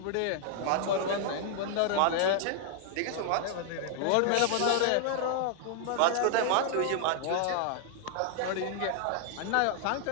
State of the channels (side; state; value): both; different; correlation 0.00